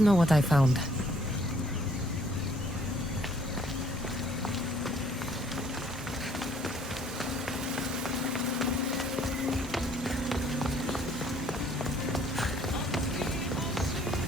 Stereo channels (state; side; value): normal; both; correlation 0.62